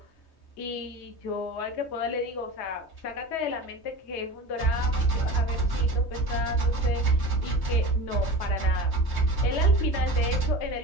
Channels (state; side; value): late; right; 3.2 ms